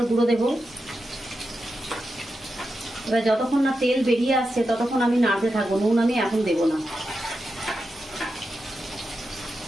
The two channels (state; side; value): normal; both; correlation 0.89